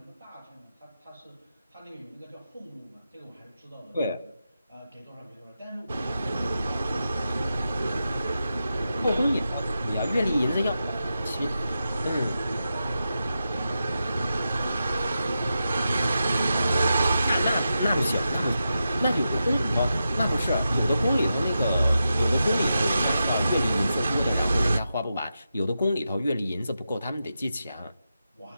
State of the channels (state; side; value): inverted; both; correlation -0.89